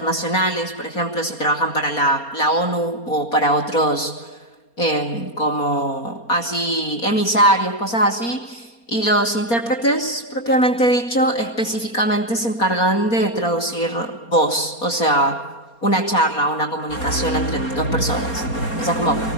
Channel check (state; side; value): late; right; 4.3 ms